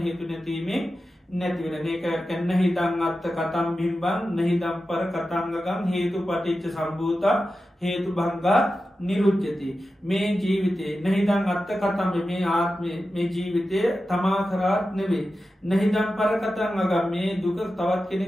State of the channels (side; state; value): both; normal; correlation 0.92